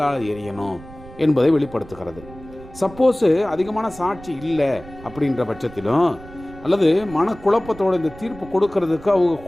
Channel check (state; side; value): noise; right; rumble, 18 dB below the sound